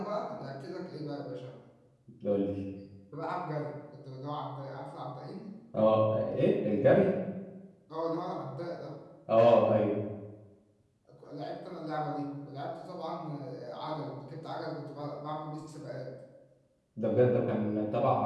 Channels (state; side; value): identical; both; correlation 1.00